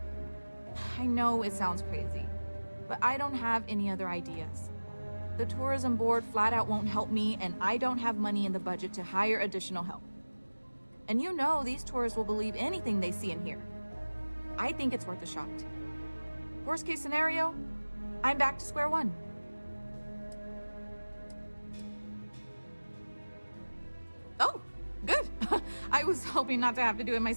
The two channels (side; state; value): both; inverted; correlation -1.00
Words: I know it sounds crazy, but I don't have any other ideas. The tourism board flat out won't help me, and I don't have money in the budget to hire additional help. And you know these tourists will believe anything they see and hear. I think it's worth a shot. Worst case scenario, I'm back to square one. Oh, good. I was hoping not to have to do it